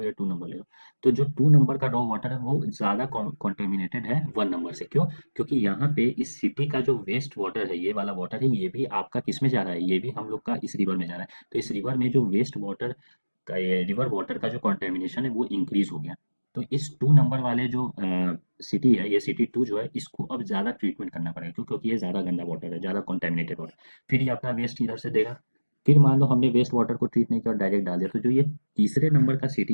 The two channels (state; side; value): inverted; both; correlation -1.00